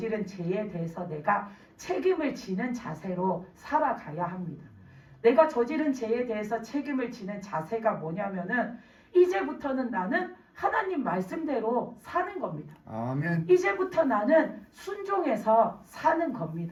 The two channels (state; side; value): identical; both; correlation 1.00